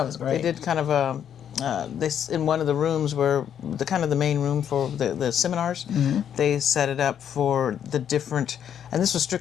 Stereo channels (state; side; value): quieter; right; 9.1 dB